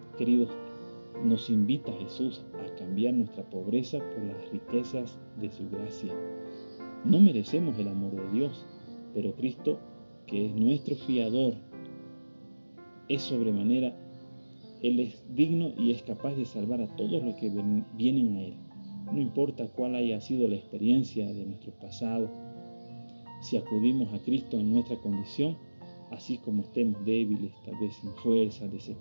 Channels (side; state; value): both; inverted; correlation -1.00